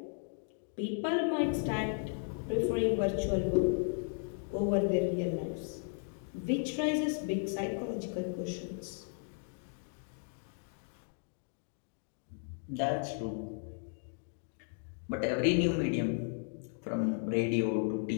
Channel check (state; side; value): silent; right; 54 dB below the other